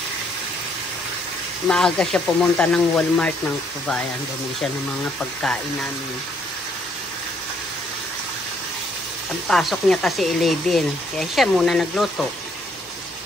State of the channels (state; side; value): normal; both; correlation 0.68